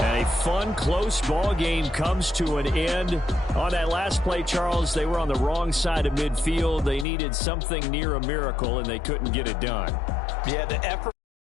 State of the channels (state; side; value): drops out; right; at 7.1 s